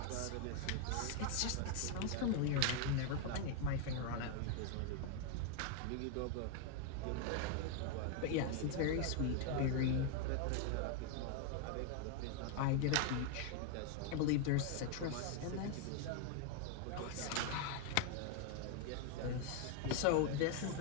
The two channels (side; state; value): both; different; correlation 0.00